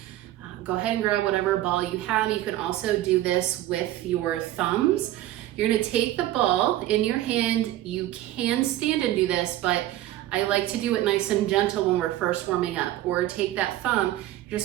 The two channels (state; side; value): quieter; left; 14.5 dB